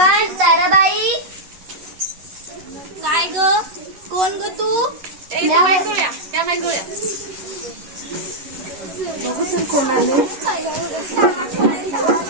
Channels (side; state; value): left; late; 11 ms